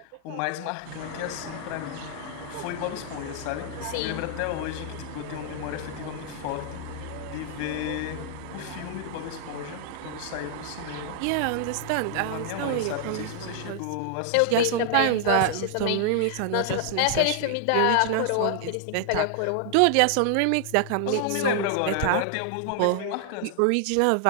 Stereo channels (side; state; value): both; different; correlation 0.00